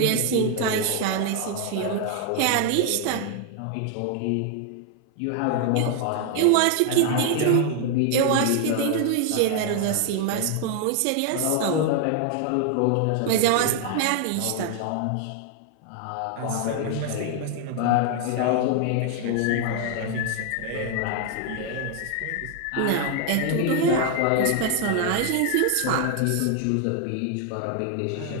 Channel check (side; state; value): both; different; correlation 0.00